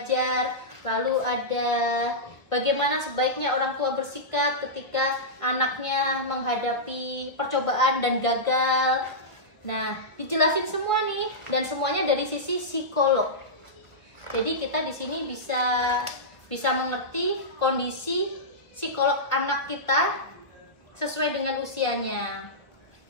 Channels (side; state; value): right; late; 1.2 ms